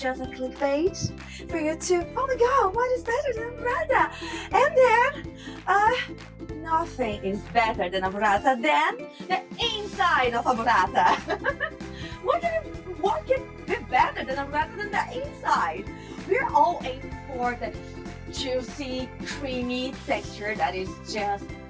a clickbait for you to, oh my god, what is better than a burrata? And then, nothing is better than a burrata than the inside of a burrata. What can be better than a burrata than the inside? We're all aiming for the juicy, creamy texture that is just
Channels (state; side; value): identical; both; correlation 1.00